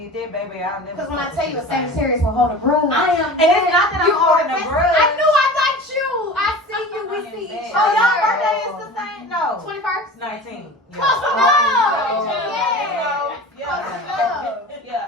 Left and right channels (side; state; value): both; normal; correlation 0.36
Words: that, baby, I'll never. Because when I fuck tell with you a the same. Sagittarius will hold a grudge. I am. And it's not that I'm holding a grudge. I knew I got you. I see you. We see each Oh, other. y'all birthday is the same? No. 21st. 19. Close Yeah. enough. Yeah. Yeah. Close enough. Yeah,